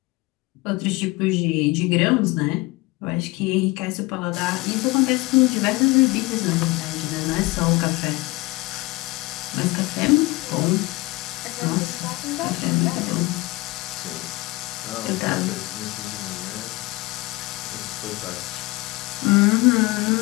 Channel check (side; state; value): right; quieter; 21.8 dB